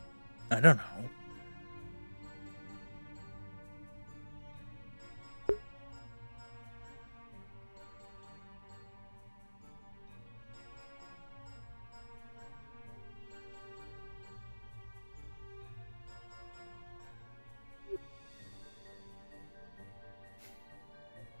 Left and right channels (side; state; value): both; inverted; correlation -1.00